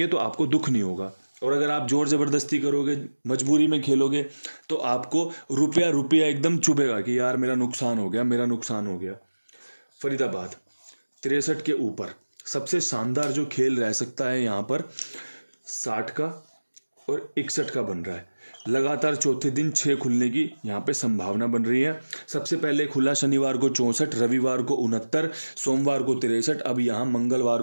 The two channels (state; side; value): inverted; both; correlation -1.00